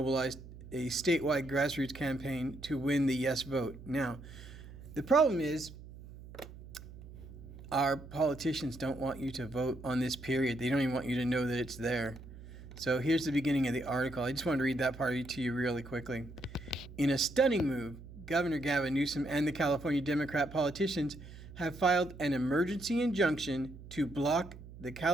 a statewide grassroots campaign to win the yes vote. Now, the problem is our politicians don't want you to vote on this period. They don't even want you to know that it's there. So here's the beginning of the article. I just want to read that part to you really quickly. In a stunning move, Governor Gavin Newsom and the California Democrat politicians have filed an emergency injunction to block the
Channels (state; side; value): noise; right; hum, 16 dB below the sound